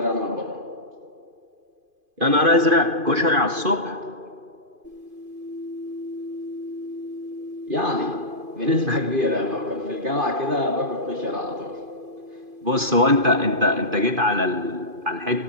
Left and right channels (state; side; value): late; left; 2.5 ms